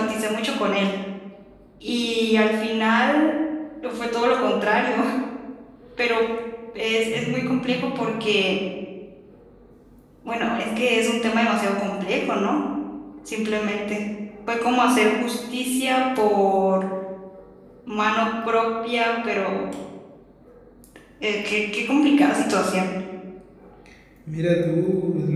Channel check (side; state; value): both; identical; correlation 1.00